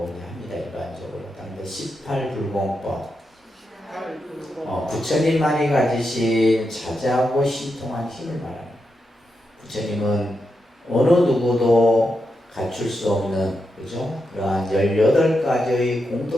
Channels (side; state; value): both; normal; correlation 0.86